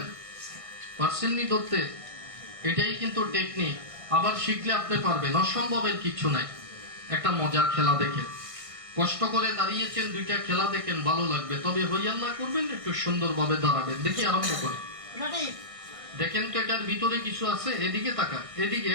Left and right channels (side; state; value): left; late; 1.6 ms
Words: পারছেননি ধরতে? এটাই কিন্তু টেকনিক। আবার শিখলে আপনি পারবেন, অসম্ভবের কিছু নাই। একটা মজার খেলা দেখেন, কষ্ট করে দাঁড়িয়েছেন, 2টা খেলা দেখেন, ভালো লাগবে। তবে হইয়াল্লা করবেন, একটু সুন্দরভাবে দাঁড়াবেন। দেখি আরম্ভ করে দেখেন তো এটার ভিতরে কিছু আছে। এদিকে তাকান, এদিকে,